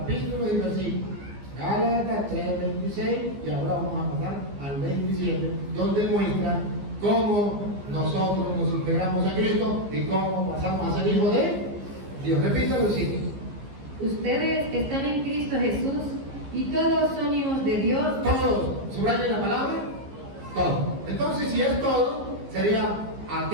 y versículos. Gálatas 3:26 y ahora vamos a pasar al 27, donde muestra cómo nosotros nos integramos a Cristo y cómo pasamos a ser hijos de Dios. Repítalo, sí. Ustedes están en Cristo Jesús, y todos son hijos de Dios. Todos, subrayen la palabra, todo. Entonces, si es todo, sería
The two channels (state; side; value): late; left; 15 ms